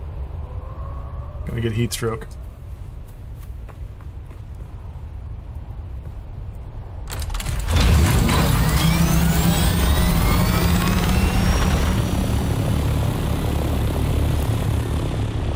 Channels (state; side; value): identical; both; correlation 1.00